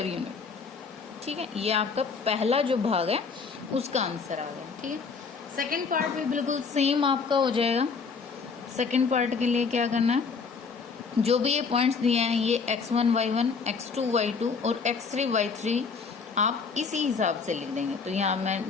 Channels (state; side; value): quieter; right; 5.2 dB